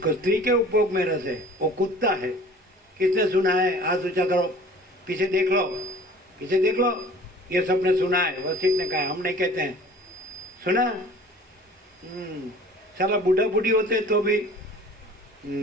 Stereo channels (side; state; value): both; normal; correlation 0.47